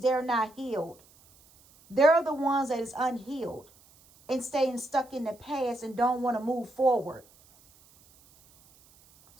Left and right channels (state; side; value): noise; right; hiss, 28 dB below the sound